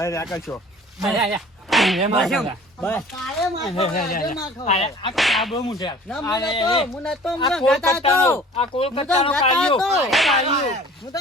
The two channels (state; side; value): normal; both; correlation 0.47